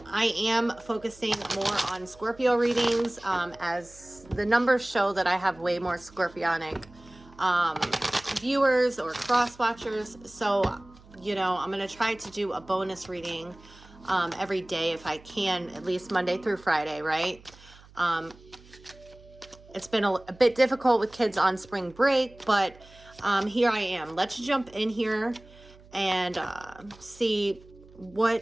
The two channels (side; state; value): right; noise; hum, 24 dB below the sound